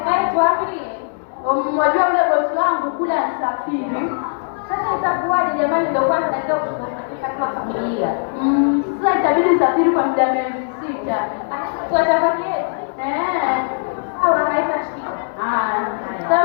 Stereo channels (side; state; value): right; silent; 62 dB below the other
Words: wapi? Mmoja yule bosi wangu kule anasafiri. Sasa itakuwaje jamani, ndio kwanza naenda kushughulikia kama familia. Sasa itabidi nisafiri kwa muda miezi 6. Tuwatafaki au haina shida.